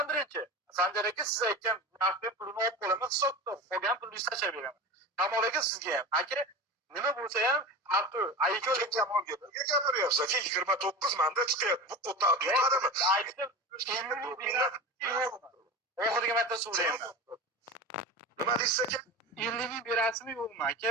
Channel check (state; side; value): normal; both; correlation 0.29